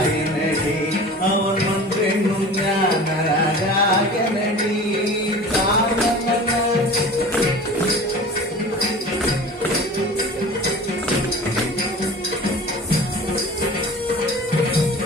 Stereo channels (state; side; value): normal; both; correlation 0.39